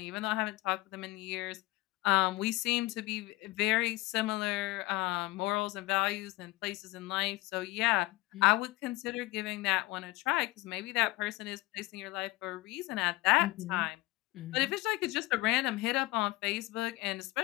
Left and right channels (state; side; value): quieter; right; 19.8 dB